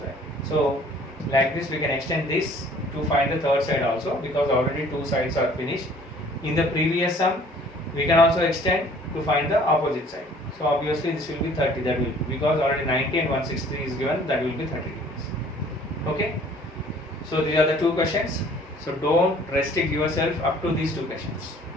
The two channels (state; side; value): normal; both; correlation 0.54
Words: So like this we can extend this to find the third side also, because already two sides are finished. In the previous sum we can also extend to find the opposite side. So obviously this will be 30, that will, because already 90 and 163 is given, that will be 30 degrees. Okay. So these are the two questions. So don't restrict yourself up to these two questions.